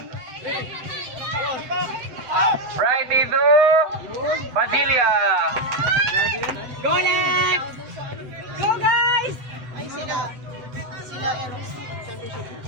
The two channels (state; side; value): late; left; 7.8 ms